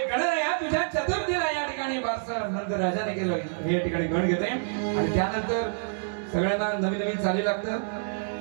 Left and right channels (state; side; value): silent; left; 60 dB below the other